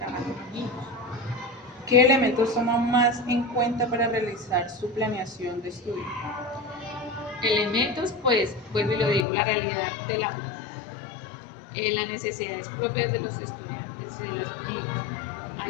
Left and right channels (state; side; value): drops out; right; at 9.2 s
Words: con los niños. ¿Qué elementos toman más en cuenta para realizar su planeación de estudio? Elementos, pues, vuelvo y lo digo, la realidad del aula, las necesidades propias de los estudiantes, de las familias.